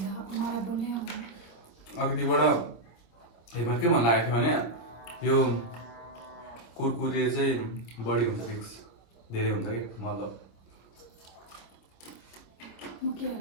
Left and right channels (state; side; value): late; right; 26 ms